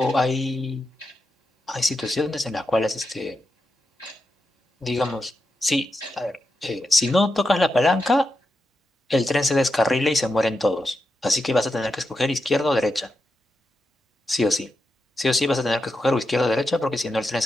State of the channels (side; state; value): both; normal; correlation 0.87